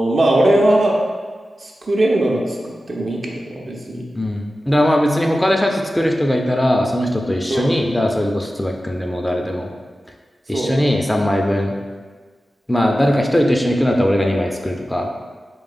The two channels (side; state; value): both; normal; correlation 0.94